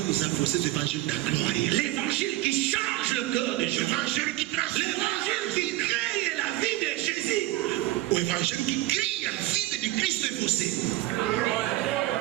a vocês o evangelho da glória. L'évangile qui change le cœur de O Jésus. evangelho que traz L'évangile qui crée la vie de Jésus. o o evangelho que cria a vida de Cristo em você.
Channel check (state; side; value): quieter; left; 16.9 dB